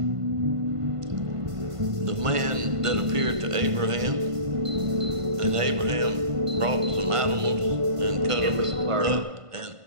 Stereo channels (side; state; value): left; late; 1.5 ms